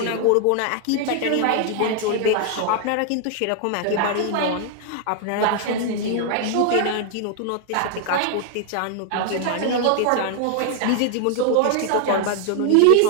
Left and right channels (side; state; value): both; different; correlation 0.00